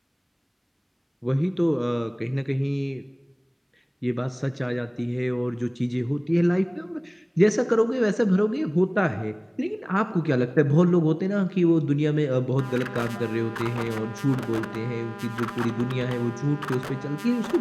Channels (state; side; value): identical; both; correlation 1.00